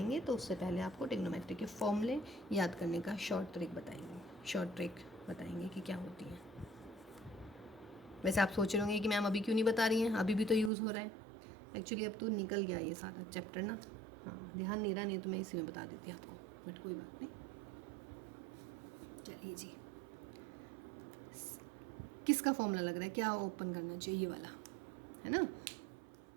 तो उससे पहले आपको ट्रिग्नोमेट्री के फॉर्मूले याद करने का शॉर्ट ट्रिक बताएंगे कि क्या होती है। वैसे आप सोच रहे होंगे कि मैम अभी क्यों नहीं बता रही हैं, अभी भी तो यूज़ हो रहा है। एक्चुअली अब तो निकल गया ये सारा चैप्टर ना, हाँ ध्यान नहीं रहा, नहीं तो मैं इसी में बता देती आपको, बट कोई बात नहीं। चलिए जी, किसका फॉर्मूला लग रहा है, क्या ओपन करना चाहिए, ये वाला है ना।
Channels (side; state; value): left; drops out; at 10.7 s